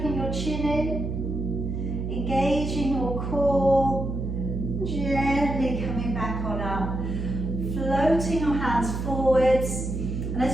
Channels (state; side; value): noise; right; hum, 3 dB below the sound